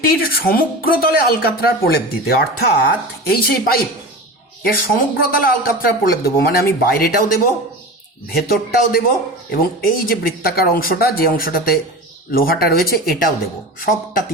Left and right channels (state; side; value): normal; both; correlation 0.30